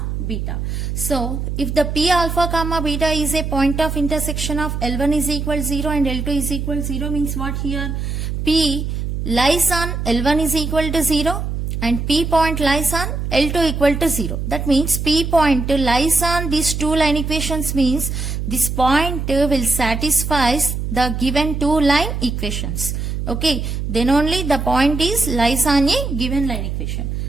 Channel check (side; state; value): right; noise; hum, 3 dB below the sound